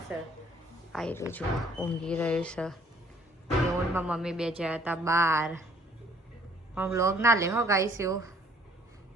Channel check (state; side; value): normal; both; correlation 0.59